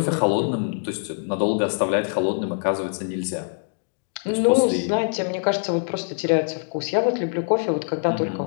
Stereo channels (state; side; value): silent; right; digital silence